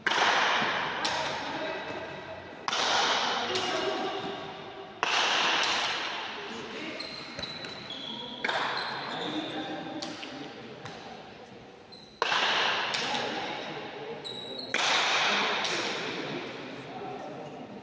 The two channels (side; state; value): both; identical; correlation 1.00